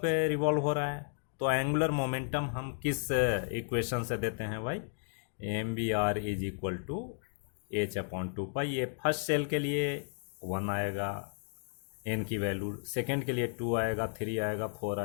पे रिवॉल्व हो रहा है, तो एंगुलर मोमेंटम हम किस इक्वेशन से देते हैं भाई, MVR is equal to H upon 2 pi. ये फर्स्ट सेल के लिए 1 आएगा, n की वैल्यू, सेकेंड के लिए 2 आएगा, 3 आएगा, 4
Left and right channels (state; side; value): silent; right; digital silence